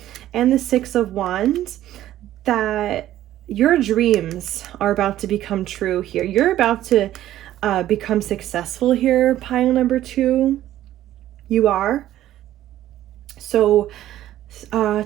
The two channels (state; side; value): quieter; left; 13.2 dB